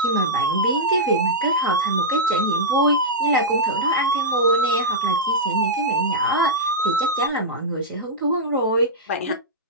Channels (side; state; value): both; normal; correlation -0.09